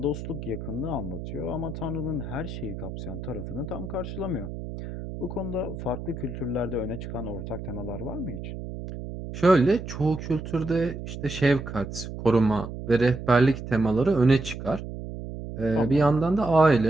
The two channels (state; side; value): noise; right; hum, 9 dB below the sound